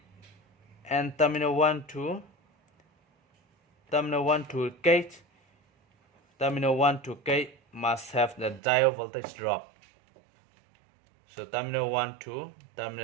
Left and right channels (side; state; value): left; drops out; at 8.6 s